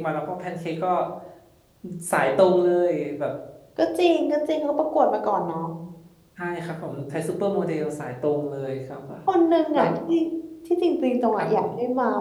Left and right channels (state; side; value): identical; both; correlation 1.00